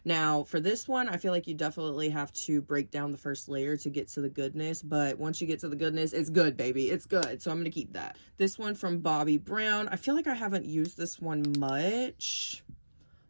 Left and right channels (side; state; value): both; inverted; correlation -1.00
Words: Now for this one, I feel like you definitely have to break down the first layer to get to the goodness, but once you get to the goodness, it's good, baby. It's good, so I'm gonna keep that. This one from Bobbi Brown. I feel like I haven't used this one much.